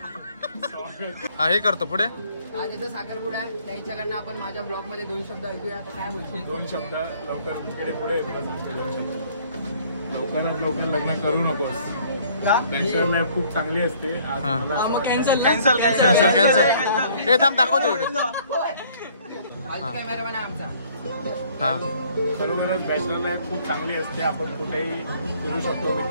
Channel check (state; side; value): inverted; both; correlation -0.59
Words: हा हे करतो पुढे. आज याचा साखरपुडा आहे. त्याच्याकडनं आपण माझ्या ब्लॉग मध्ये 2 शब्द ऐकूया. आता काय बोलशील? 2 शब्द लवकर तिकडे पुढे 2 शब्द. लवकरात लवकर लग्न करू नकोस. कॅन्सर लाईफ खूप चांगली असते. कॅन्सल कॅन्सल हे थांब दाखवतो व्हिडिओ. कॅमेरामॅन आहे आमचा. खरोखरच बॅचलर लाईफ खूप चांगली असते. आपण कुठेही फिरू शकतो,